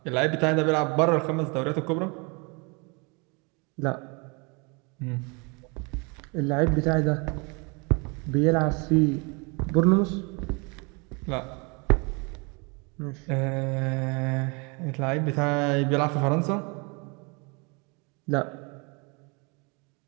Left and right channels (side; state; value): left; quieter; 30.7 dB